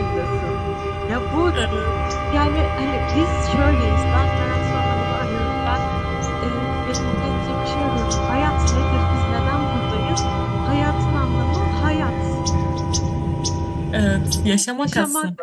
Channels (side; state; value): both; identical; correlation 1.00